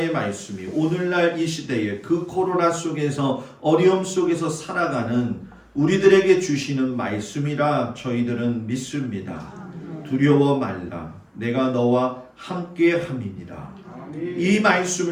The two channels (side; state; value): both; identical; correlation 1.00